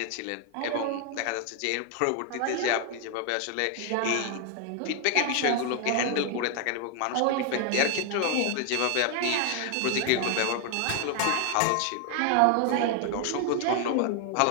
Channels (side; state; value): both; different; correlation 0.00